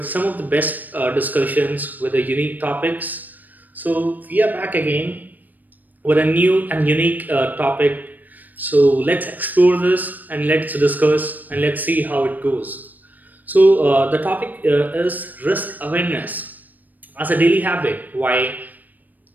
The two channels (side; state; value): left; late; 0.084 ms